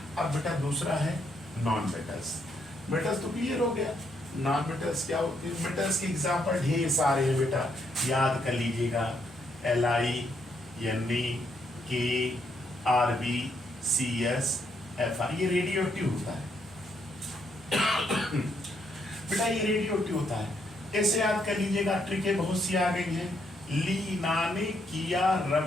अब बेटा दूसरा है नॉन मेटल्स। मेटल्स तो क्लियर हो गया, नॉन मेटल्स क्या होते हैं। मेटल्स के एग्जाम्पल ढेर सारे हैं बेटा, याद कर लीजिएगा, Li, Ne, K, Rb, Cs, Fi, ये रेडियो एक्टिव होता है। बेटा ये रेडियो एक्टिव होता है, ऐसे याद कर लीजिएगा, ट्रिकें बहुत सी आ गई हैं। लीना ने किया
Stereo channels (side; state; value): both; normal; correlation 0.75